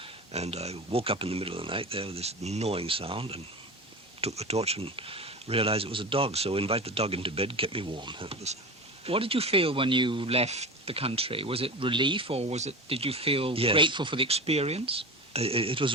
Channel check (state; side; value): normal; both; correlation 0.28